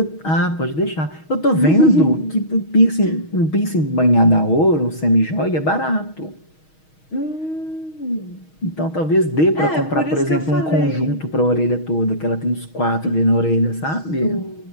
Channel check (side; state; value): right; late; 6.4 ms